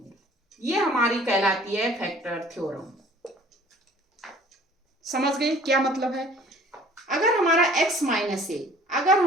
ये हमारी कहलाती है फैक्टर थ्योरम। समझ गए क्या मतलब है, अगर हमारा x माइनस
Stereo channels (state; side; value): normal; both; correlation 0.52